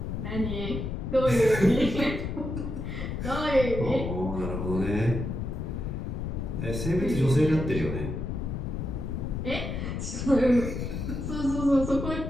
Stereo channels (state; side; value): noise; left; rumble, 4 dB below the sound